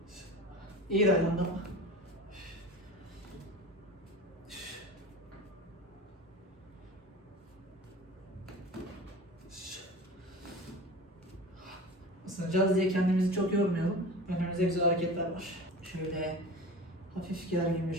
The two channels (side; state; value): both; normal; correlation 0.35